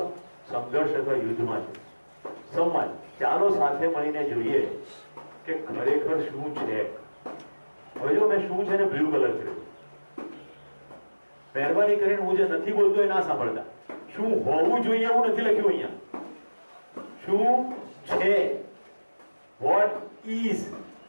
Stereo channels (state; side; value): inverted; both; correlation -1.00